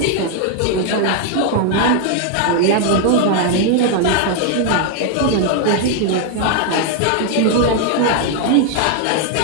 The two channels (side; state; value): both; different; correlation 0.00